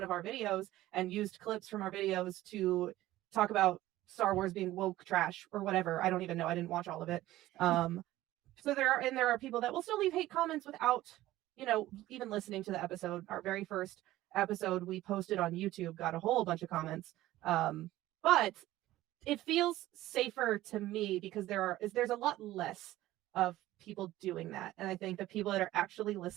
of our videos and used clips from our videos to talk about Star Wars being woke trash or whatever. I don't even know. I didn't watch all of it. So there are people that will still leave hate comments without, even listening to the episode. Our very first episode we posted on YouTube got a whole bunch of comments. But it feels safer to me because there's a lot less of people doing that. And I think the people that are actually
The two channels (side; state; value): left; quieter; 15.7 dB